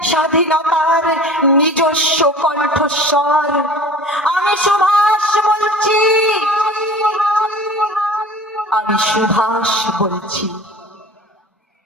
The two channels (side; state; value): both; normal; correlation 0.41